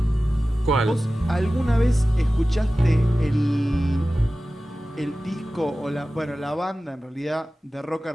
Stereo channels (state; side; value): normal; both; correlation 0.96